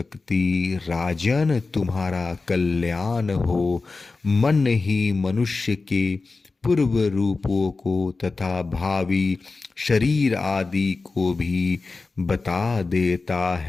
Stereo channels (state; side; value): quieter; right; 3.9 dB